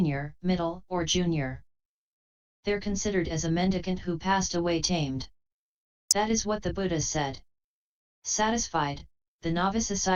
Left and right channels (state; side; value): identical; both; correlation 1.00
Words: middle, or junior, they're considered as a mendicant who passed away tamed. That is what the Buddha said. Satisfied, the novice